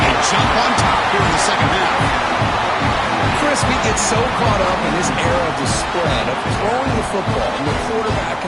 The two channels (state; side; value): identical; both; correlation 1.00